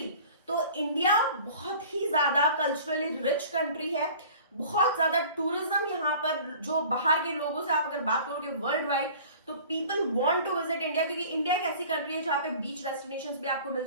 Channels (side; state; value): both; inverted; correlation -0.45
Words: तो इंडिया बहुत ही ज्यादा कल्चरली रिच कंट्री है। बहुत ज्यादा टूरिज्म यहाँ पर, जो बाहर के लोगों से आप अगर बात करोगे वर्ल्ड वाइड, तो people want to visit India, क्योंकि इंडिया एक ऐसी कंट्री है जहाँ पे बीच डेस्टिनेशंस भी आपको मिल